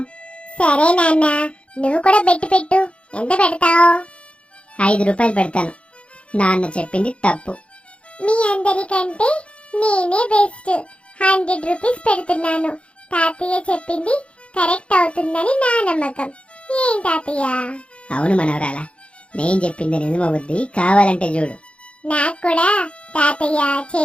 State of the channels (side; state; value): right; late; 0.059 ms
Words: సరే నాన్న, నువ్వు కూడా పెట్టు. ఎంత పెడతావు? 5 రూపాయలు పెడతాను. నాన్న చెప్పింది తప్పు. మీ అందరికంటే నేనే బెస్ట్. 100 రూపీస్ పెడుతున్నాను. తాతయ్య చెప్పింది కరెక్ట్ అవుతుందని నా నమ్మకం. ఏం తాతయ్య? అవును మనవరాలా, నేను చెప్పింది నిజమవుద్ది, కావాలంటే చూడు. నాకు కూడా తాతయ్య